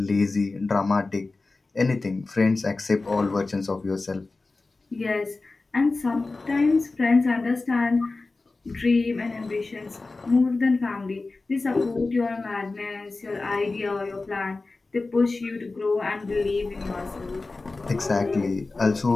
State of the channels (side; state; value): right; quieter; 3.5 dB